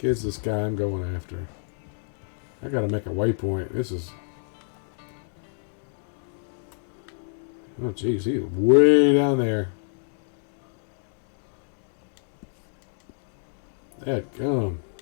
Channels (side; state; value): right; silent; 60 dB below the other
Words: is this guy I'm going after? I gotta make a waypoint. This is... Oh, jeez, he's way down there. Dadgum.